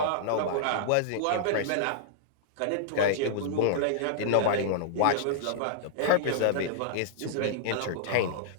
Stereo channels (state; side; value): different; both; correlation -0.02